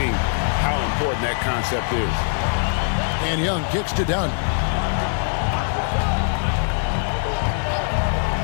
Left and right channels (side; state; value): right; silent; 63 dB below the other